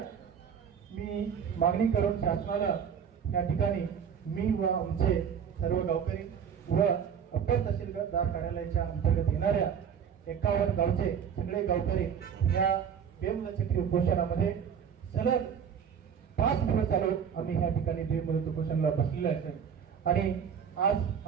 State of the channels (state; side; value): quieter; left; 7.6 dB